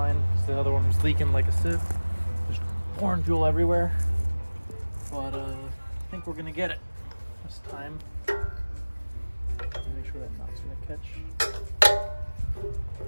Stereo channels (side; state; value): both; inverted; correlation -1.00